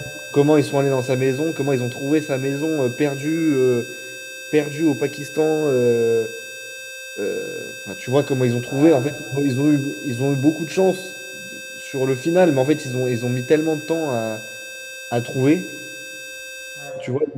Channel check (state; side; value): identical; both; correlation 1.00